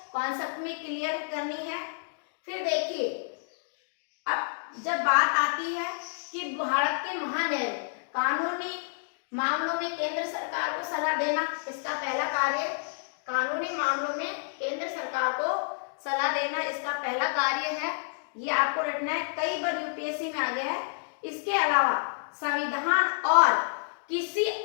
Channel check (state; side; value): silent; right; digital silence